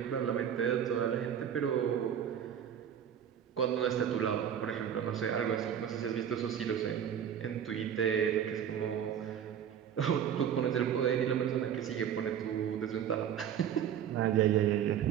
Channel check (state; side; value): quieter; left; 9.0 dB